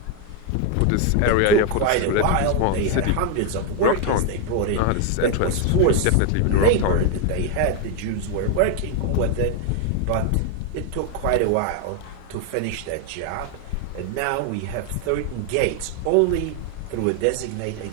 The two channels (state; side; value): different; both; correlation 0.01